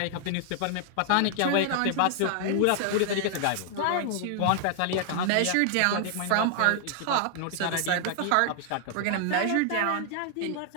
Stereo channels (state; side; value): different; both; correlation 0.00